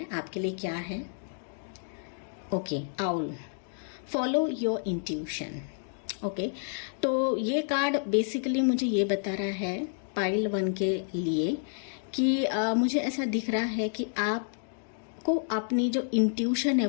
आपके लिए क्या है। Okay, owl, follow your intuition. Okay, तो ये कार्ड बेसिकली मुझे ये बता रहा है पाइल 1 के लिए कि मुझे ऐसा दिख रहा है कि आपको अपनी जो इंट्यूशन है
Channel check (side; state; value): right; silent; digital silence